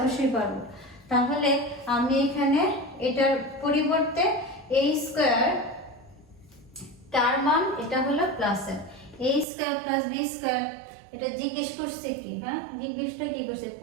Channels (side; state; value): left; drops out; at 9.5 s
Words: পারবো। তাহলে আমি এখানে এটার পরিবর্তে a স্কয়ার তার মান এটা হলো প্লাসের a square plus B square, এটা জিজ্ঞেস করছে কি, হ্যাঁ জিজ্ঞেসটা কি করছে,